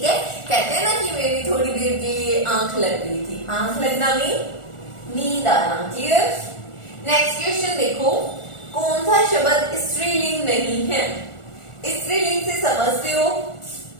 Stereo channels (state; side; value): late; right; 1.4 ms